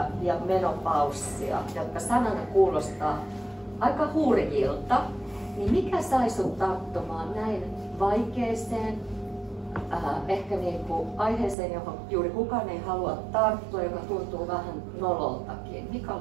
ja menopaussia, jotka sanana kuulostaa aika hurjilta. Niin mikä sai sut tarttumaan näin vaikeeseen, ehkä aiheeseen, johon juuri kukaan ei halua tarttua, joka tuntuu vähän nololtakin. Mikä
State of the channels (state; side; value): drops out; left; at 11.6 s